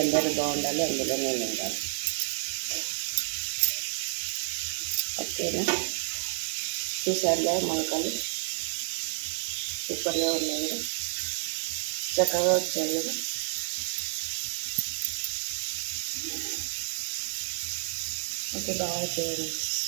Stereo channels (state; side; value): silent; left; digital silence